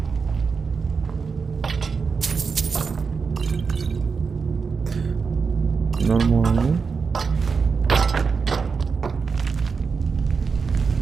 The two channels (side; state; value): left; quieter; 5.2 dB